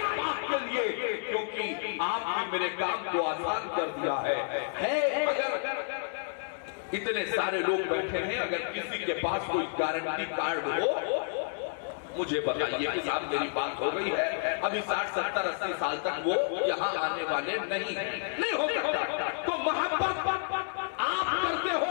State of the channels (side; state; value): right; silent; 58 dB below the other